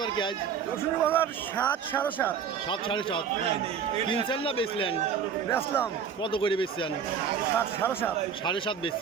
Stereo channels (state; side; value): quieter; left; 7.2 dB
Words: কি আজ? রসুনের বাজার 7 সাড়ে 7। 7 সাড়ে 7 কিনছেন না বেচলেন? বেচলাম কত করে বেচছেন? 7 সাড়ে 7। 7.5